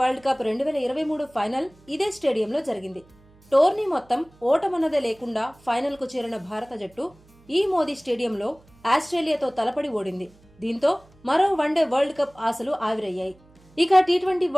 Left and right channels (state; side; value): noise; right; hum, 29 dB below the sound